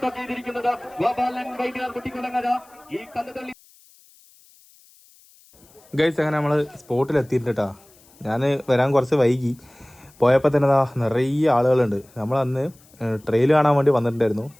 ചെയ്തിരിക്കുന്നത് ഗോപാലൻ വൈദ്യർ കുട്ടിക്കുളങ്ങര. ഈ കന്നുതള്ളി ഗൈസ് അങ്ങനെ നമ്മൾ സ്പോട്ടിൽ എത്തിയിട്ടാ. ഞാൻ വരാൻ കുറച്ച് വൈകി. പോയപ്പോൾ തന്നെ നിറയെ ആളുകളുണ്ട്. നമ്മളന്ന് ട്രെയിൽ കാണാൻ വേണ്ടി വന്നിട്ടുണ്ടായിരുന്നു.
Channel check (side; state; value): left; noise; hiss, 28 dB below the sound